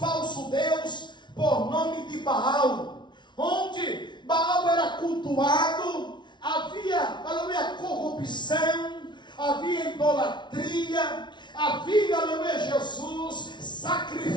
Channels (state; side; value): late; right; 0.22 ms